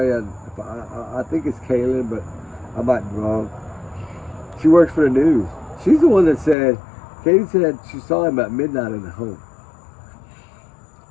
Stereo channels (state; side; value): drops out; right; at 6.6 s